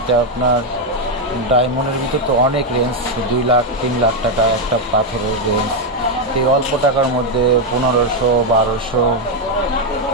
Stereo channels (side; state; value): both; normal; correlation 0.03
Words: আপনার ডায়মন্ডের ভিতর তো অনেক রেঞ্জ, 2 লাখ 3 লাখ টাকা একটা পাথরের রেঞ্জ। এই অল্প টাকার মধ্যে 1500, 1200,